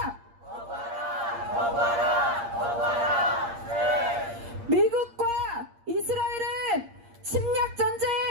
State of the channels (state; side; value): late; left; 8.6 ms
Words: 거부하라! 네. 미국과 이스라엘은 침략